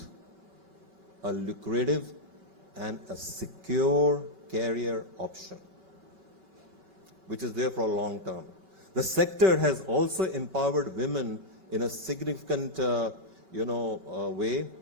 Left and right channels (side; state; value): left; late; 2.8 ms